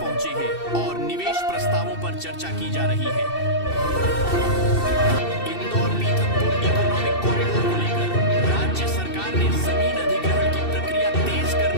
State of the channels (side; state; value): right; late; 2.7 ms